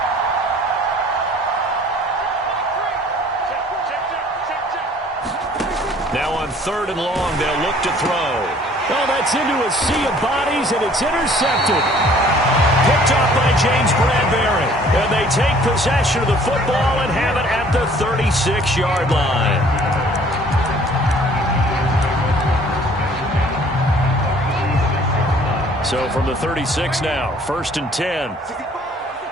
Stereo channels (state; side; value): normal; both; correlation 0.55